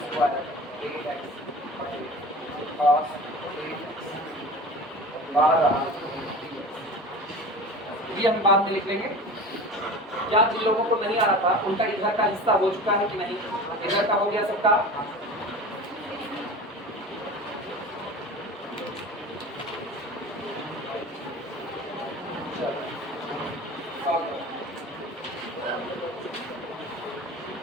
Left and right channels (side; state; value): both; normal; correlation 0.36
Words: square A X cos A X बाहर ये हम बाद में लिख लेंगे। क्या जिन लोगों को नहीं आ रहा था उनका इधर का हिस्सा हो चुका है कि नहीं, इधर का हो गया सबका?